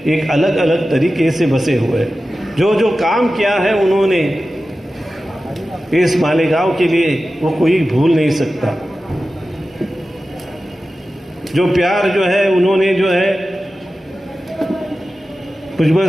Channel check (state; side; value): normal; both; correlation 0.94